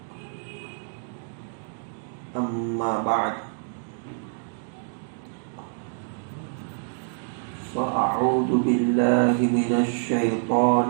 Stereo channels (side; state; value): left; silent; digital silence